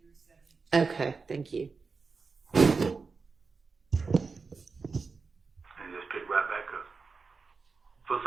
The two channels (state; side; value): quieter; left; 4.6 dB